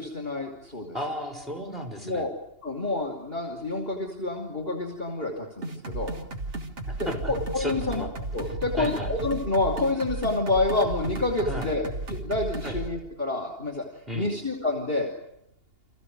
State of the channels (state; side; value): late; left; 2.8 ms